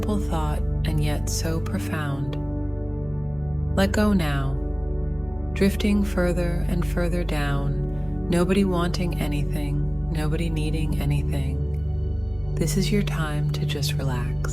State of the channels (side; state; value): left; noise; hum, 20 dB below the sound